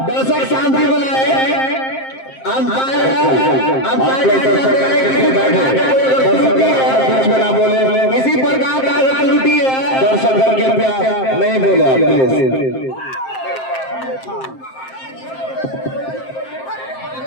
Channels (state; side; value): late; right; 7.6 ms